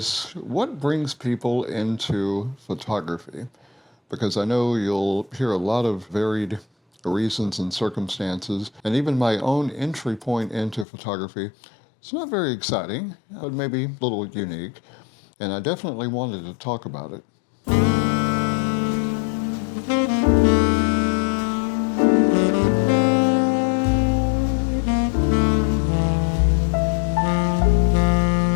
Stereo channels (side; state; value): right; drops out; at 10.9 s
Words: what brings people into photography? Because I know you'll hear a lot of varied reasons and circumstances, and even my own entry point into photography, it's not very exciting, but maybe a little unique, and I definitely wanted to talk about it.